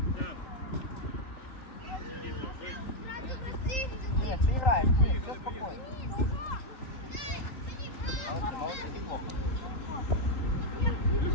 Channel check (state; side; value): late; right; 3.8 ms